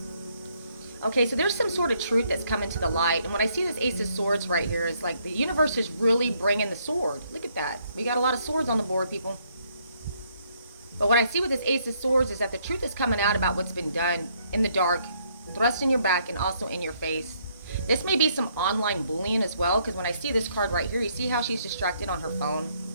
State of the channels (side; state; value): both; inverted; correlation -0.70